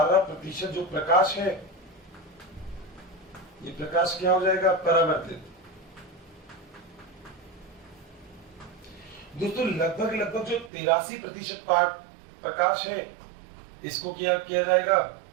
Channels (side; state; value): left; drops out; at 10.7 s